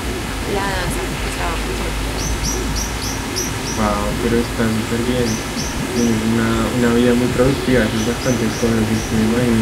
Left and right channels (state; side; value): identical; both; correlation 1.00